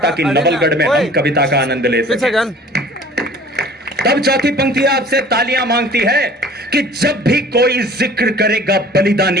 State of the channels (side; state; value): both; normal; correlation 0.48